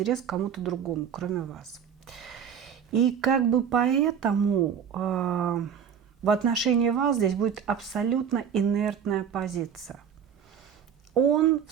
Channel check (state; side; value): quieter; left; 7.7 dB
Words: к кому-то другому, кроме вас. И как бы поэтому в отношении вас здесь будет абсолютно инертная позиция. Он в